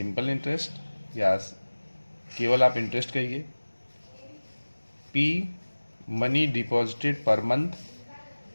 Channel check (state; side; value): inverted; both; correlation -1.00